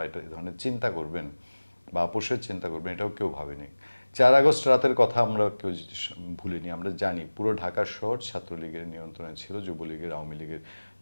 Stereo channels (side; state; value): both; inverted; correlation -1.00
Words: এটা ধরনের চিন্তা করবেন বা আপোষের চিন্তা করবেন, এটাও কেউ ভাবেনি। 4 আগস্ট রাতের কথা আমরা কেউ ভুলিনি। আমরা জানি পুরো ঢাকা শহর ছাত্রলীগের নিয়ন্ত্রণে ছিল, যুবলীগের, আওয়ামী লীগের